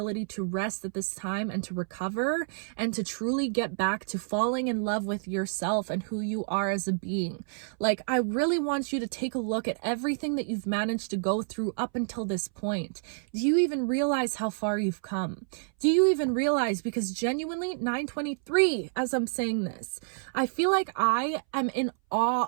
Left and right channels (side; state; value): left; silent; 59 dB below the other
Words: to rest at this time and to recover and to truly get back to falling in love with yourself and who you are as a being. Like, I really want you to take a look at everything that you've managed to go through up until this point. Do you even realize how far you've come? Do you even realize? Because genuinely, 923, as I'm saying this, I feel like I am in awe